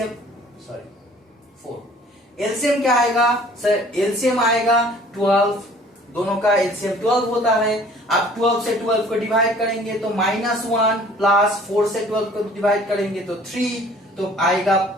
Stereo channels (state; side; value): normal; both; correlation 0.52